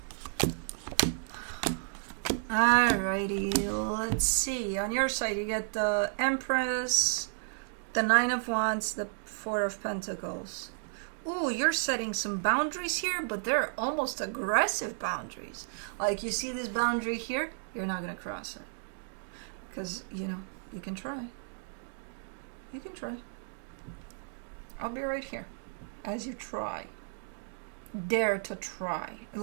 Alrighty, let's see. On your side, you get the Empress, The Nine of Wands, the Four of Pentacles. Ooh, you're setting some boundaries here, but they're almost aggressive boundaries. Like, you see this boundary here? You're not going to cross it. Because, you know, you can try. You can try. I'll be right here as you try. Dare to try.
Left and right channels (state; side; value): silent; left; digital silence